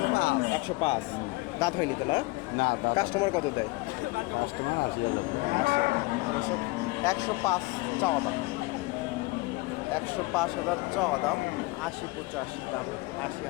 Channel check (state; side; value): quieter; right; 23.3 dB